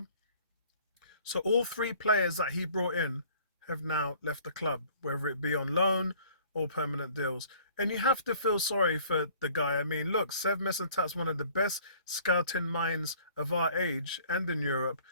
So all three players that he brought in have now left the club, whether it be on loan or permanent deals. And you have to feel sorry for the guy. I mean, look, Sev Mislintat's one of the best scouting minds of our age and in Europe,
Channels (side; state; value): both; inverted; correlation -0.54